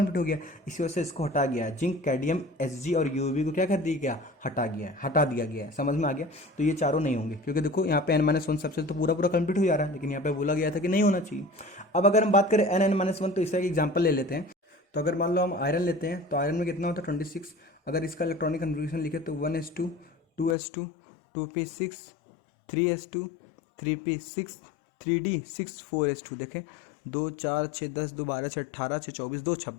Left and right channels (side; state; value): right; drops out; at 20.6 s